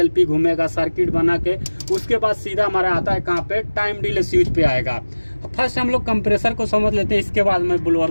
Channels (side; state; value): both; inverted; correlation -1.00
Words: घूमेगा सर्किट बना के, उसके बाद सीधा हमारा आता है कहाँ पे, टाइम डिले स्विच पे आएगा। फर्स्ट हम लोग कंप्रेसर को समझ लेते हैं, इसके बाद मैं ब्लोअर